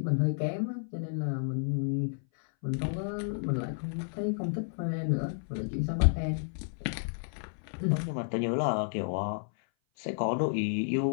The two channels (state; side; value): silent; right; 57 dB below the other